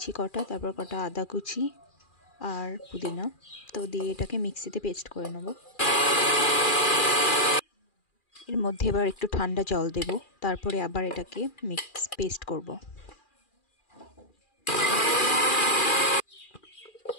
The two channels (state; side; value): late; right; 2.4 ms